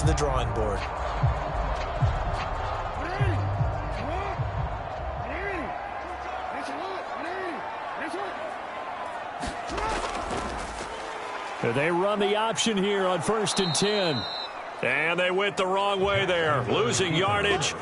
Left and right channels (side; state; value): both; identical; correlation 1.00